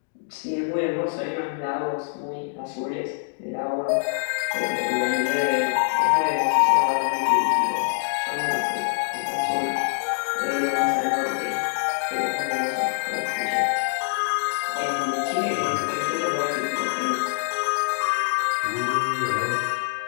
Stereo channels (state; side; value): silent; right; digital silence